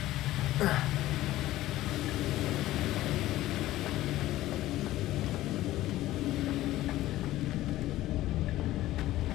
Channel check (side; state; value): right; quieter; 15.5 dB